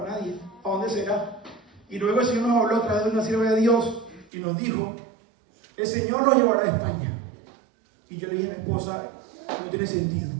nadie. ¿A dónde será? Y luego el Señor nos habló a través de una sierva de Dios y nos dijo el Señor los llevará a España. Y yo le dije a mi esposa, no tiene sentido,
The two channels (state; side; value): drops out; left; at 4.3 s